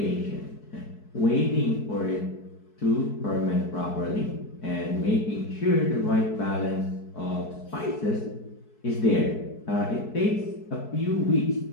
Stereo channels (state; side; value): late; right; 4.6 ms